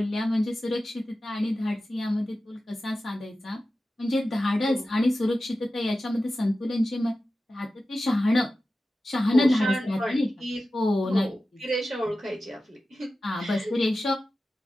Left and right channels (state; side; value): normal; both; correlation 0.94